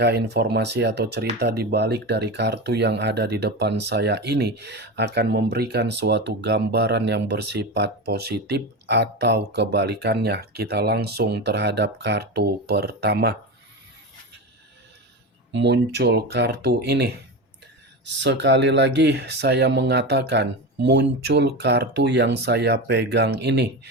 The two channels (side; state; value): both; normal; correlation 0.22